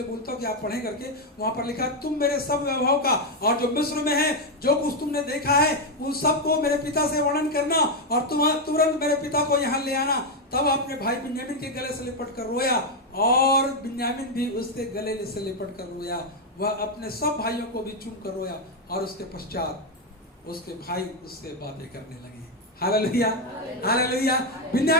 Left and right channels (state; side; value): normal; both; correlation 0.03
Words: बोलता हूँ कि आप पढ़ें करके, वहां पर लिखा, तुम मेरे सब वैभव का और जो मिस्र में है जो कुछ तुमने देखा है उन सबको मेरे पिता से वर्णन करना, और तुम तुरंत मेरे पिता को यहाँ ले आना। तब अपने भाई बिन्यामीन के गले से लिपट कर रोया, और बिन्यामीन भी उसके गले से लिपट कर रोया। वह अपने सब भाइयों को भी चूम कर रोया, और उसके पश्चात उसके भाई उससे बातें करने लगे। Hallelujah, hallelujah.